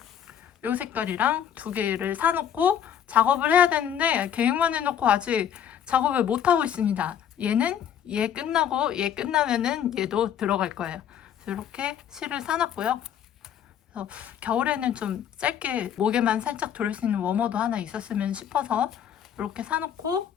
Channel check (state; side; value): quieter; right; 9.3 dB